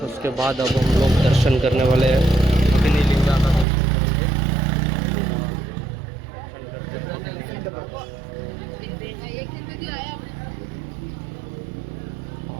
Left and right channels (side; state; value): left; drops out; at 3.7 s